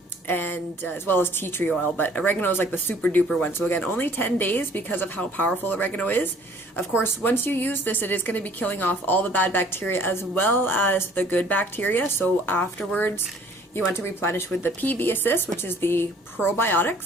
And as well as tea tree oil, but oregano is like the super duper one. So again, only 10 days because of how powerful oregano is. Of course, once you use this, it is going to be killing off all the bad bacteria as well as the good bacteria. So afterwards, you want to replenish with the PB Assist, which is the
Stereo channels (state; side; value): normal; both; correlation 0.55